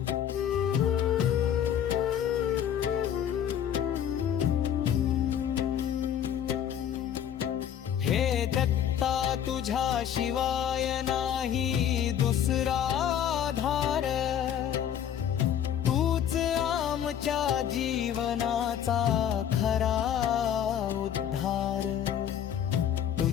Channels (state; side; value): quieter; right; 9.6 dB